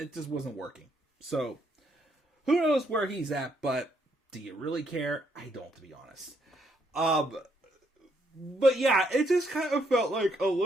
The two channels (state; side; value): normal; both; correlation 0.73